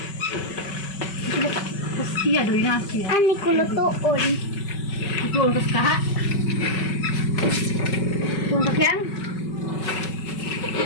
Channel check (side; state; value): right; late; 5.3 ms